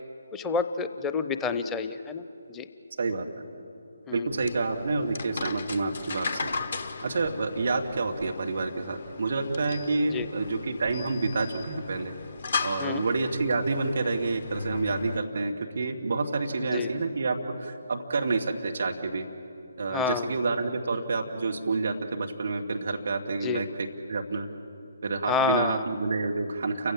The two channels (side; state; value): both; inverted; correlation -0.70